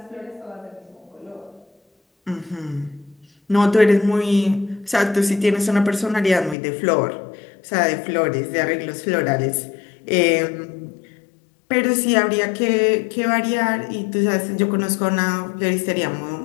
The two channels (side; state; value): right; drops out; at 6.6 s